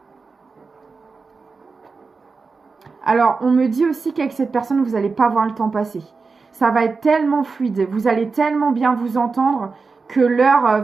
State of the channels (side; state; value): left; quieter; 4.5 dB